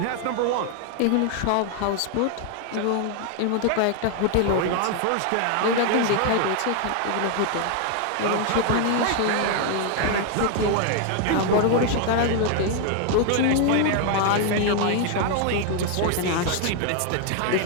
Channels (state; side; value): different; both; correlation 0.00